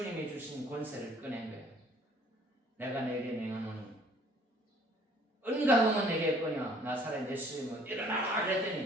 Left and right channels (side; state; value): both; normal; correlation 0.57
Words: 주신 권세를 꺼낸 거예요. 내가 내게 명하노니 은가금은 내게 꺼냐 나사렛 예수님은 일어나라